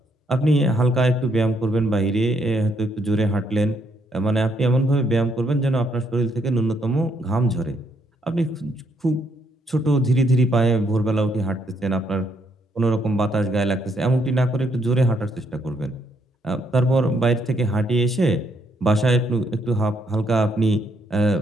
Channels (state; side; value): normal; both; correlation 0.73